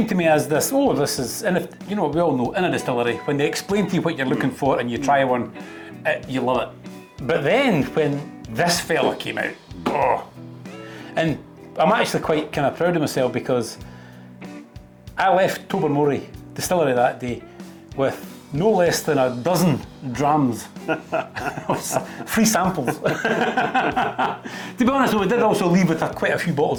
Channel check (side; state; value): both; identical; correlation 1.00